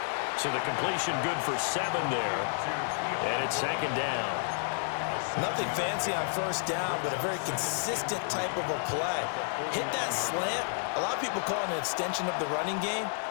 So the completion good for 7 there. And it's second down. Nothing fancy on first down, but a very consistent type of a play. Hit that slant. A lot of people call it an extension of the running game,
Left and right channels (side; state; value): right; silent; digital silence